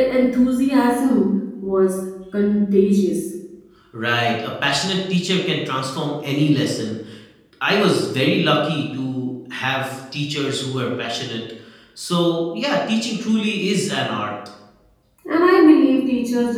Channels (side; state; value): both; identical; correlation 1.00